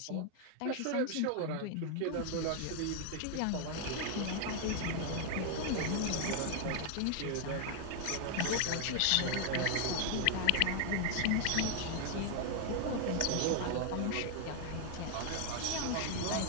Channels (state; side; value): different; both; correlation 0.00